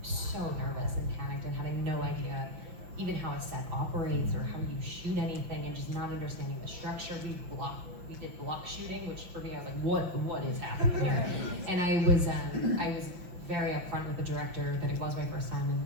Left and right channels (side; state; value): left; late; 5.8 ms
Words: so nervous and panicked and having no idea even how a set operates or how you shoot anything, and just not understanding the structure. We did block shooting, which for me I was like, what is happening here? And I was very upfront with the director that it was my first time, and